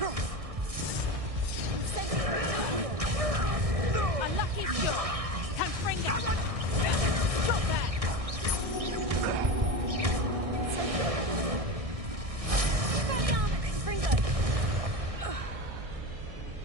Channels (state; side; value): late; left; 1.6 ms